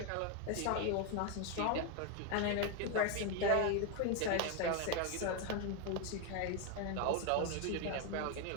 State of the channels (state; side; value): different; both; correlation 0.01